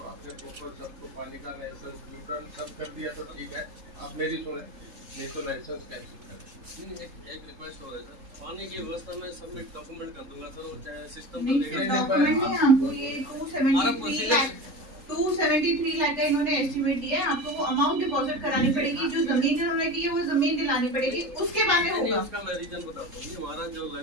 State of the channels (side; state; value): left; late; 3.8 ms